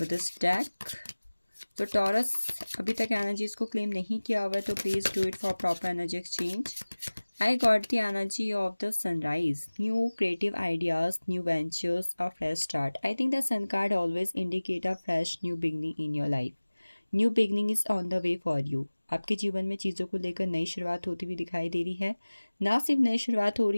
this deck. तो टॉरस अभी तक एनर्जीज को क्लेम नहीं किया हुआ है तो please do it for proper energy exchange. I got the energy of the sunrise, new creative ideas, new ventures, a fresh start. I think the sun card always indicate a fresh new beginning in your life. New beginning is on the way for you. आपके जीवन में चीज़ों को लेकर नई शुरुआत होती हुई दिखाई दे रही है। ना सिर्फ नई शुरुआत हो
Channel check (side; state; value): both; inverted; correlation -1.00